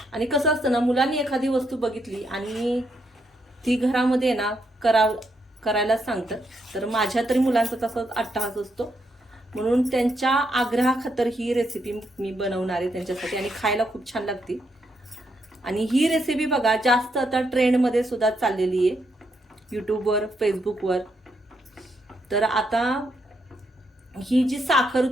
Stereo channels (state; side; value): normal; both; correlation 0.78